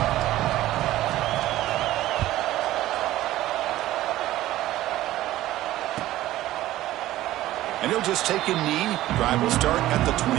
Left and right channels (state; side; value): quieter; left; 15.2 dB